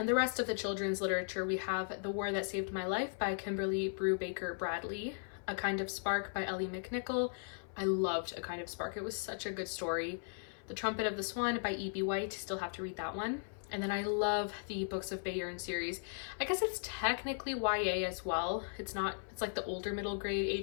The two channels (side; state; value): right; silent; 53 dB below the other